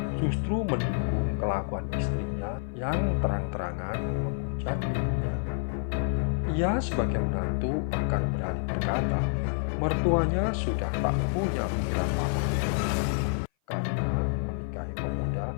justru mendukung kelakuan istrinya yang terang-terangan menghujat ibunya. Ia sebagai menantu bahkan berani berkata, mertuanya sudah tak punya pikiran waras karena menikahi pemuda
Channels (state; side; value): silent; right; 56 dB below the other